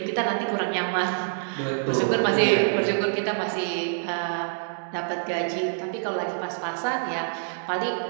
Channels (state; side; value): silent; left; digital silence